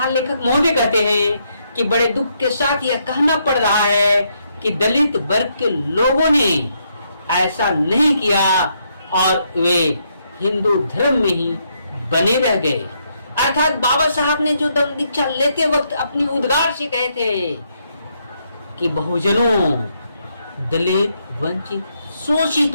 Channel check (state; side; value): inverted; both; correlation -0.76